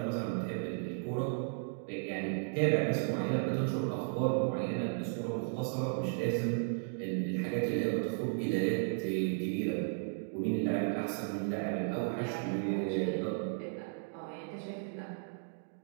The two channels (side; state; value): left; silent; digital silence